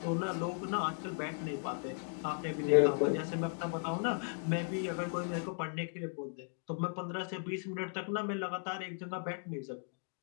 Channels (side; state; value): right; silent; 53 dB below the other